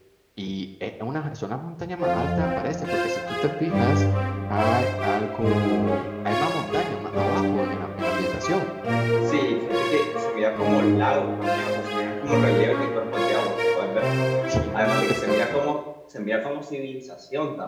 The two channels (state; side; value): identical; both; correlation 1.00